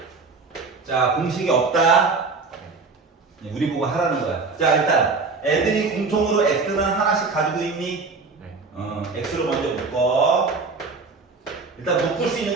자, 공식이 없다. 우리 보고 하라는 거야. 자, 일단 애들이 공통으로 x는 하나씩 가지고 있니? 네. x로 먼저 묶어. 일단 묶을 수 있는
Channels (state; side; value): quieter; left; 4.2 dB